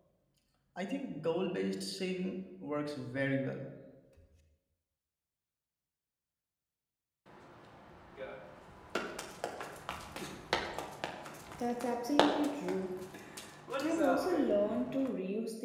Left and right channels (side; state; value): both; identical; correlation 1.00